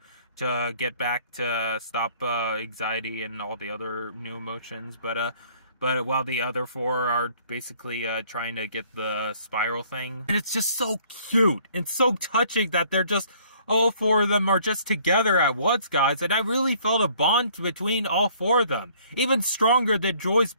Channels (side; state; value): both; inverted; correlation -0.59